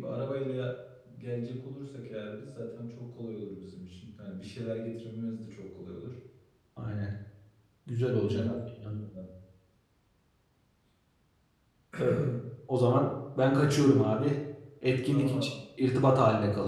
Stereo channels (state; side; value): identical; both; correlation 1.00